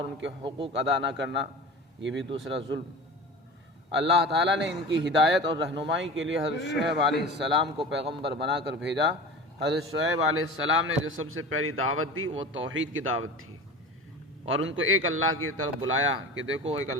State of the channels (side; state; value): both; normal; correlation 0.33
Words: ان کے حقوق ادا نہ کرنا یہ بھی دوسرا ظلم۔ اللہ تعالیٰ نے ان کی ہدایت اور رہنمائی کے لیے حضرت شعیب علیہ السلام کو پیغمبر بنا کر بھیجا۔ حضرت شعیب علیہ السلام نے جو سب سے پہلی دعوت دی وہ توحید کی دعوت تھی، اور ان کو ایک اللہ کی طرف بلایا کہ دیکھو ایک